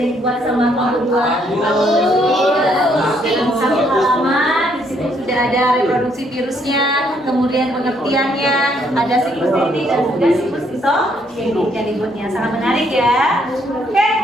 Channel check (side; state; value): both; normal; correlation 0.69